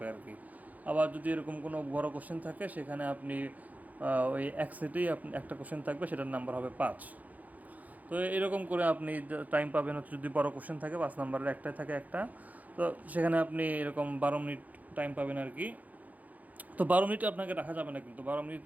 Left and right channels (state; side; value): late; left; 0.078 ms